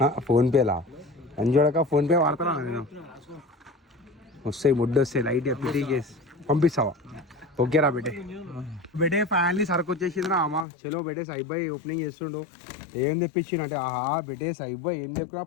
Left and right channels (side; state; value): right; drops out; at 10.7 s